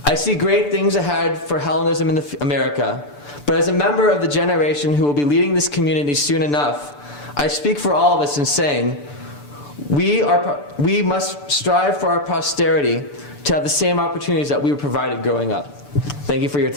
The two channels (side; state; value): right; late; 6.9 ms